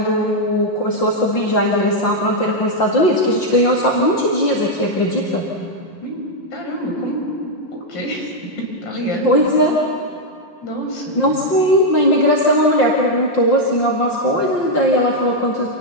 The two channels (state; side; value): late; right; 5.6 ms